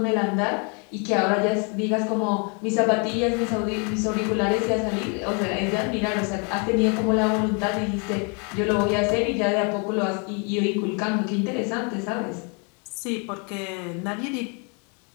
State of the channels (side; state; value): right; quieter; 35.8 dB